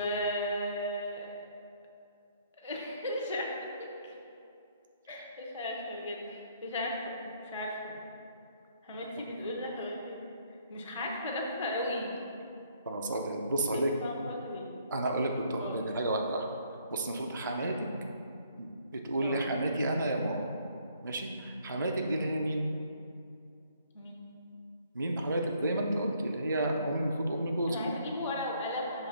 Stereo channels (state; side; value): inverted; both; correlation -0.66